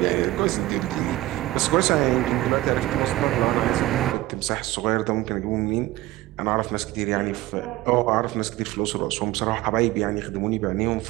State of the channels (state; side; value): quieter; left; 17.4 dB